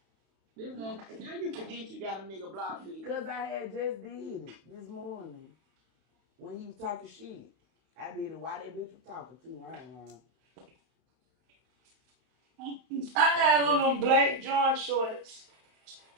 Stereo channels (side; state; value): left; late; 31 ms